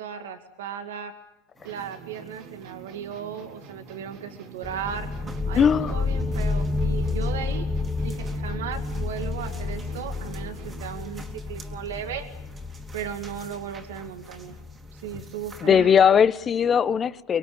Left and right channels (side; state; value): right; quieter; 4.5 dB